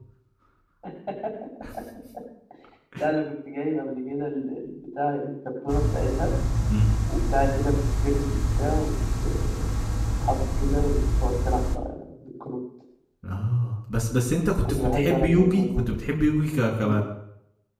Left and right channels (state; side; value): identical; both; correlation 1.00